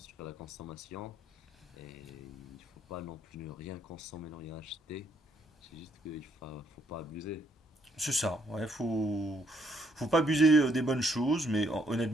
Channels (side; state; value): both; normal; correlation 0.70